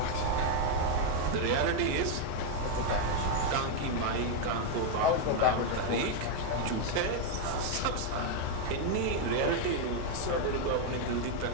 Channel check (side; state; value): both; different; correlation 0.00